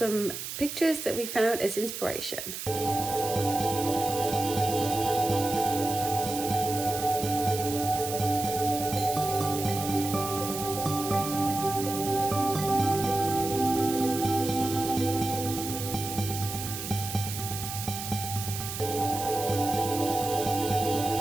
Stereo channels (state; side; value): noise; right; hiss, 7 dB below the sound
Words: pictures that we found as inspiration.